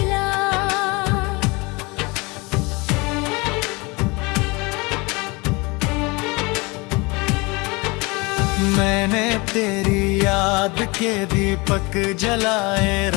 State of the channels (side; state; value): right; quieter; 26.2 dB